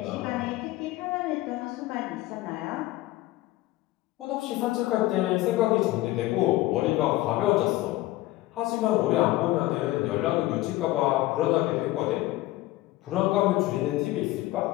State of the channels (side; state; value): right; quieter; 17.3 dB